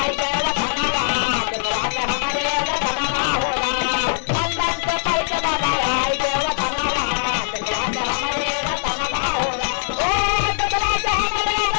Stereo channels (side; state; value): right; silent; 65 dB below the other